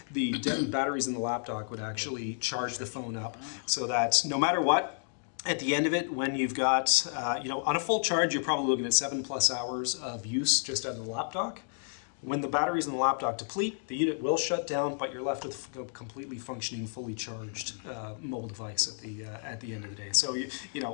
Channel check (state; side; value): silent; right; digital silence